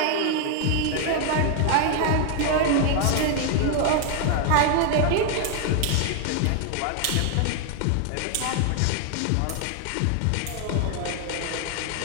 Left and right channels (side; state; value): both; different; correlation 0.00